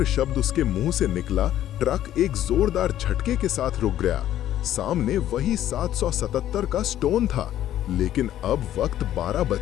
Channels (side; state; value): right; quieter; 12.2 dB